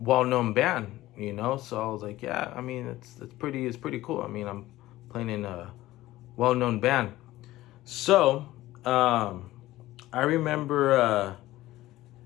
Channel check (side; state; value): right; quieter; 16.4 dB